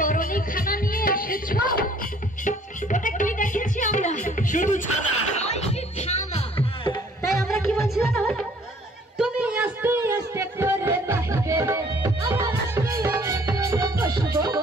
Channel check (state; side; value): normal; both; correlation 0.57